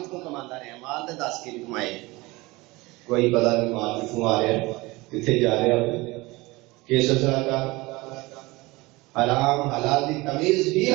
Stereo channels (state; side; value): quieter; left; 22.3 dB